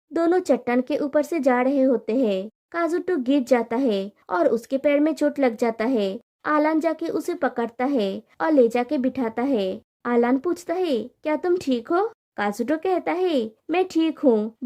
दोनों चट्टान के ऊपर से जा रहे होते हैं। काजुटो गिर जाता है और उसके पैर में चोट लग जाता है। आलान जाके उसे पकड़ता है और ले जाके बिठाता है। आलान पूछता है क्या तुम ठीक हो? काजुटो कहता है मैं ठीक हूँ,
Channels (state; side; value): identical; both; correlation 1.00